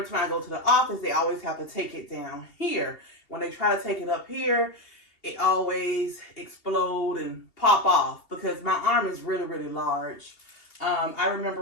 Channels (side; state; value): right; late; 2.8 ms